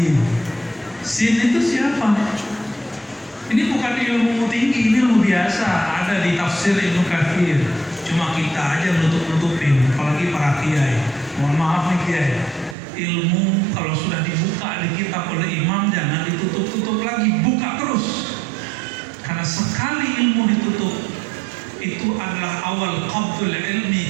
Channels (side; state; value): left; drops out; at 12.8 s